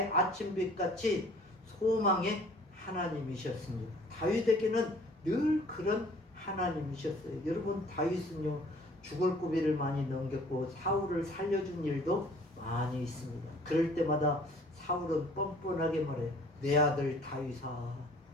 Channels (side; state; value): both; normal; correlation 0.53